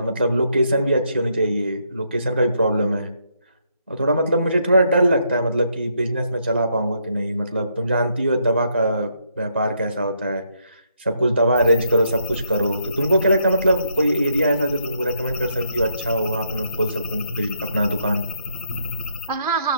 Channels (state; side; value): inverted; both; correlation -0.75